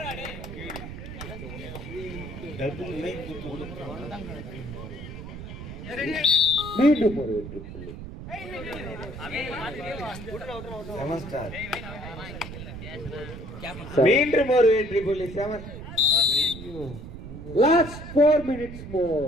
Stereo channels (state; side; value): noise; right; rumble, 10 dB below the sound